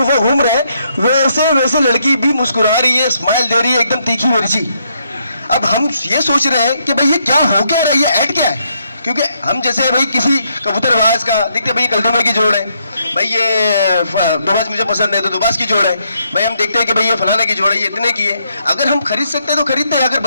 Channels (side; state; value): both; inverted; correlation -0.75